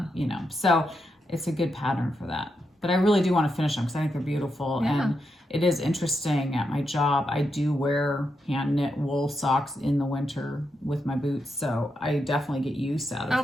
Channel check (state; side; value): normal; both; correlation 0.84